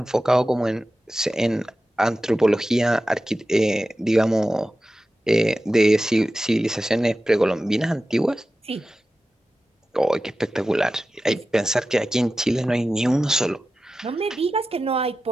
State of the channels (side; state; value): both; normal; correlation 0.94